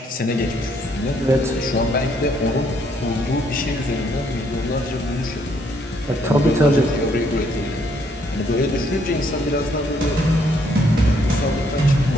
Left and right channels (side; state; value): both; normal; correlation 0.69